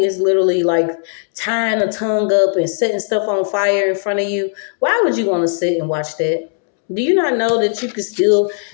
literally like tying a tongue up and setting stuff on fire in front of you, why would you want to sit and watch that? Do you not know that you could still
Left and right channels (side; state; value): right; silent; 68 dB below the other